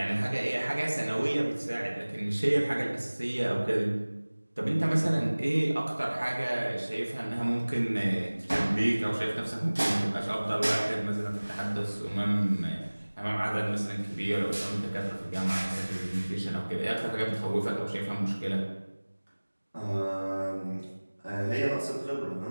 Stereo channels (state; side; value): inverted; both; correlation -1.00